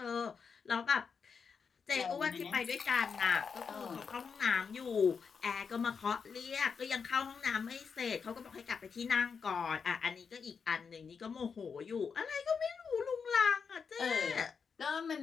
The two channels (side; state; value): right; quieter; 5.9 dB